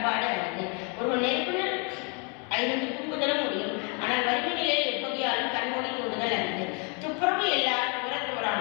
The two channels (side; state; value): right; quieter; 35.8 dB